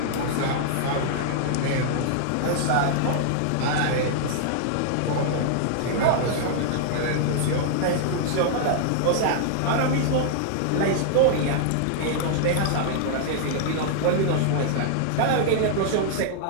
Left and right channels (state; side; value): different; both; correlation -0.01